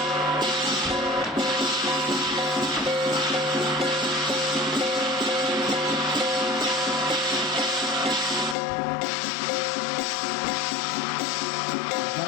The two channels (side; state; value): right; drops out; at 8.6 s